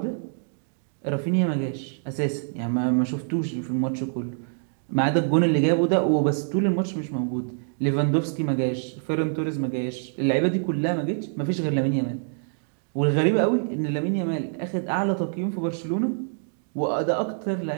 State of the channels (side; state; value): left; silent; digital silence